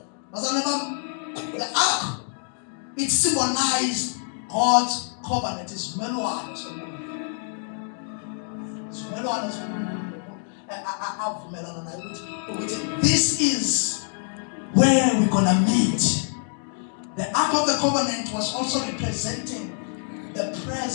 The ark, it symbolized God's covenant. It's melon. This is where we're gonna meet. The ark of the covenant was also representing the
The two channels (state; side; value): silent; right; 61 dB below the other